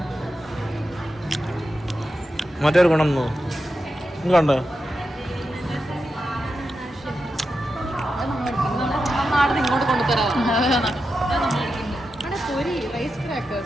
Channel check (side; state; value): both; normal; correlation 0.89